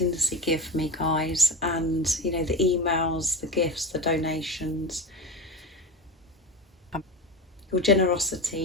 give me, guys, and you know, the emails, the gifts, the donations, your generosity,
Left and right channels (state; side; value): normal; both; correlation 0.25